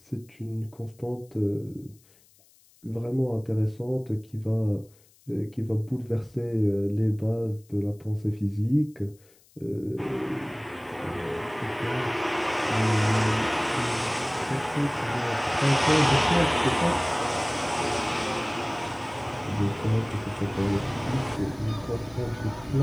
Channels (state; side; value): noise; left; hiss, 30 dB below the sound